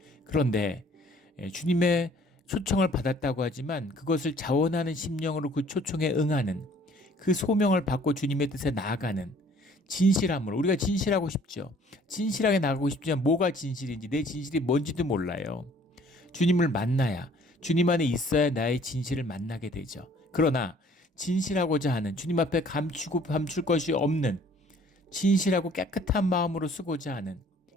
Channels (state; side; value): normal; both; correlation 0.56